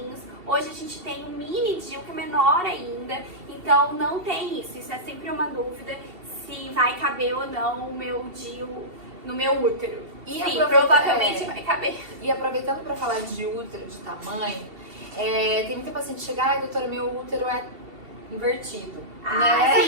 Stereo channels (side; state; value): left; late; 2.7 ms